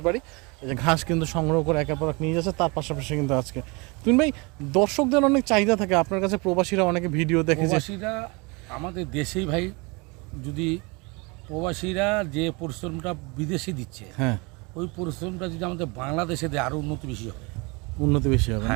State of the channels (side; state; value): left; quieter; 28.1 dB